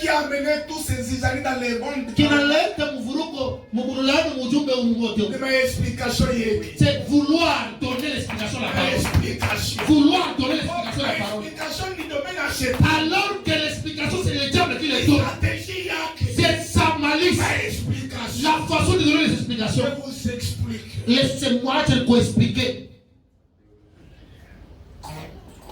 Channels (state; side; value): identical; both; correlation 1.00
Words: qui a amené tous ces Israélites dans les mondes, Kinaleta mvuruko, mburulano, mujumbe ungoto. de ma explication hier. C'est vouloir donner l'explication à la parole. Explication. Vouloir donner l'explication à la parole. L'explication du domaine à Satan. Alors que l'explication c'est le diable qui les donne. Stratégie yake. C'est sa malice. Ma explication. La façon de donner les explications. Je vous explique. Laissez-moi te l'expliquer.